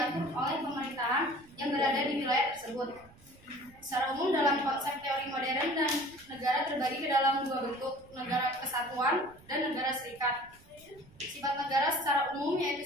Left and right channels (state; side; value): noise; right; rumble, 25 dB below the sound